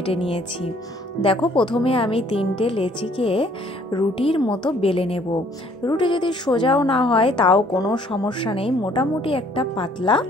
নিয়েছি। দেখো, প্রথমে আমি 3টে লেচিকে রুটির মতো বেলে নেব। রুটি যদি সোজাও না হয় তাও কোনো সমস্যা নেই, মোটামুটি একটা পাতলা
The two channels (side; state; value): both; normal; correlation 0.60